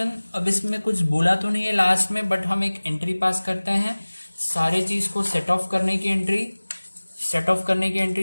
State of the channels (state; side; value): inverted; both; correlation -1.00